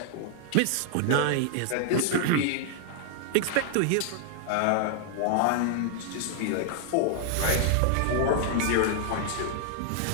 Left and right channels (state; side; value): different; both; correlation -0.01